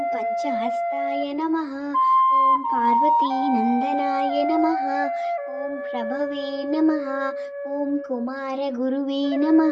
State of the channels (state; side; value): identical; both; correlation 1.00